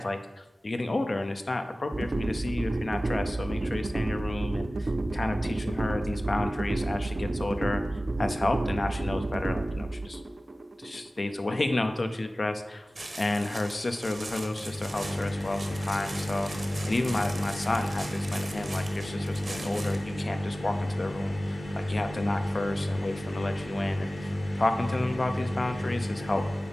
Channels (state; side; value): normal; both; correlation 0.97